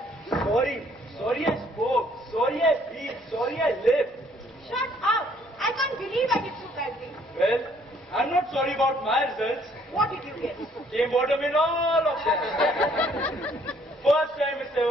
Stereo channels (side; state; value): both; normal; correlation 0.63